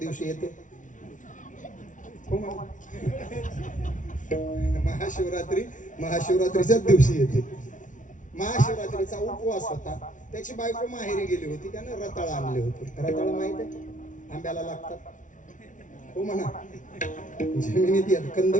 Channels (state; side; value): late; right; 0.37 ms